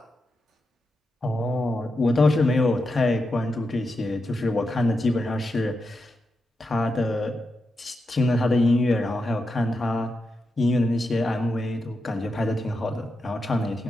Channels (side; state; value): both; normal; correlation 0.87